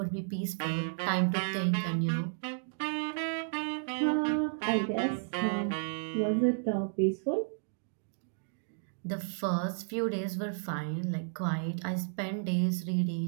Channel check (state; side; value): silent; left; digital silence